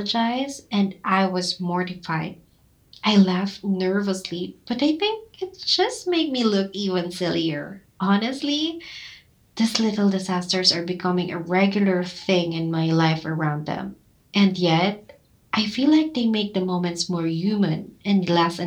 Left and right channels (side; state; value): both; identical; correlation 1.00